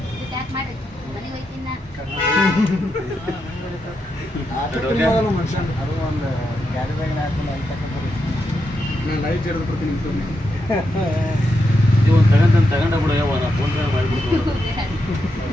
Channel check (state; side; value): normal; both; correlation 0.84